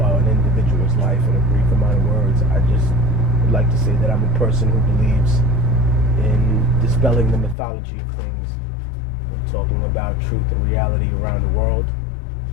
individual's life in a brief amount of words. I just would like to say that I'm a person who believes in dispelling the mythology of things and talking about truth and reality around the world.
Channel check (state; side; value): drops out; right; at 7.6 s